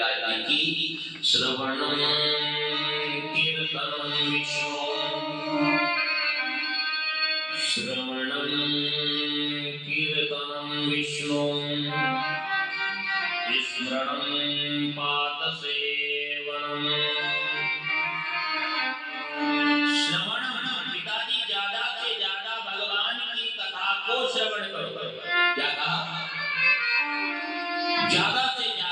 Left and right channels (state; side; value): identical; both; correlation 1.00